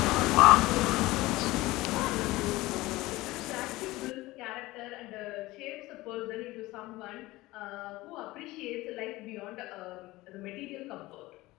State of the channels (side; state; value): right; quieter; 19.2 dB